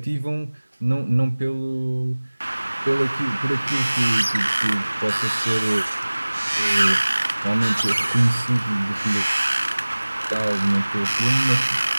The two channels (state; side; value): inverted; both; correlation -1.00